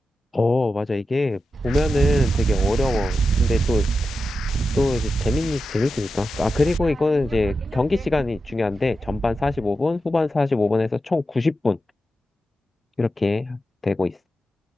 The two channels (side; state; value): both; normal; correlation 0.90